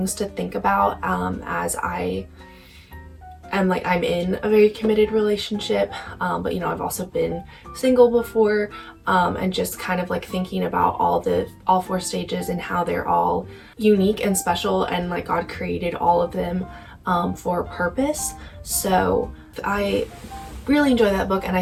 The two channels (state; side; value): identical; both; correlation 1.00